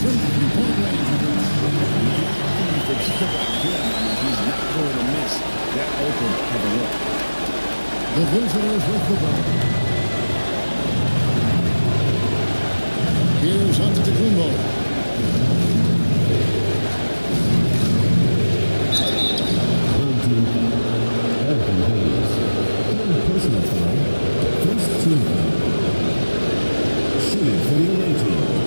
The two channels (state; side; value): inverted; both; correlation -1.00